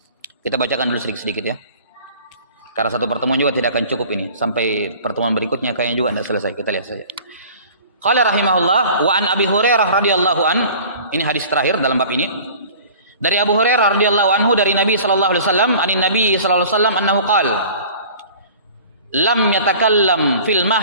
Kita bacakan dulu sedikit-sedikit ya. Karena satu pertemuan juga tidak akan cukup ini. Sampai pertemuan berikutnya kayaknya juga tidak selesai. Kita lihat saja. Qala rahimahullah wa an Abi Hurairah radhiyallahu an. Ini hadis terakhir dalam bab ini. Dari Abu Hurairah radhiyallahu anhu dari Nabi sallallahu alaihi wasallam, Nabi sallallahu alaihi wasallam annahu qala lam yatakallam fil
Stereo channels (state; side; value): inverted; both; correlation -0.45